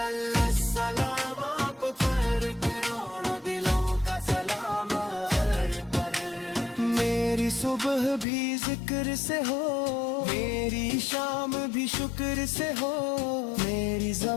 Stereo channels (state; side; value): drops out; right; at 8.2 s